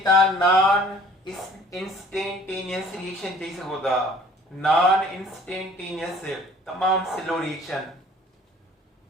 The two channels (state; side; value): normal; both; correlation 0.52